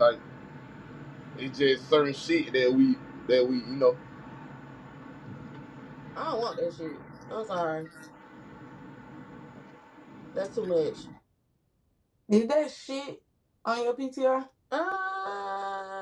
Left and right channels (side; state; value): both; identical; correlation 1.00